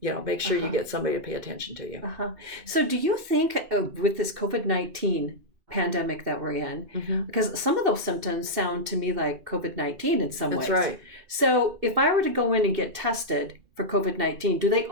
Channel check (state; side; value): late; left; 2.5 ms